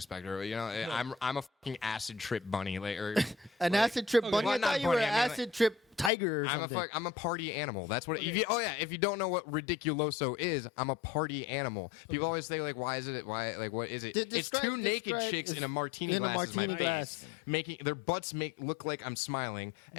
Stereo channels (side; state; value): right; drops out; at 6.1 s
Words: spectre, I'm a fucking acid trip bunny, like or An acid trip bunny. Well, I not thought you were bunny, an I mean, acid trip tiger or something. I'm a party animal. That's what. Okay. If you don't know what Ridiculoso is, I'm a party animal. People always say like, why is it? Why like what is it? It's two naked chicks in a martini in a glass. martini glass. Making their butts look like I'm smiling,